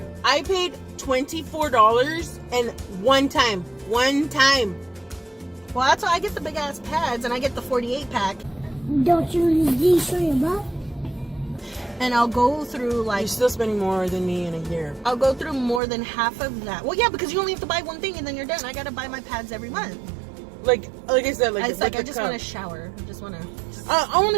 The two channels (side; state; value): left; drops out; at 15.8 s